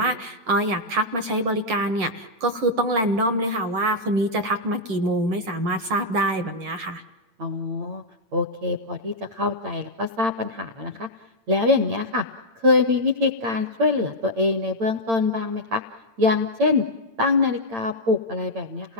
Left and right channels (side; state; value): left; late; 8.8 ms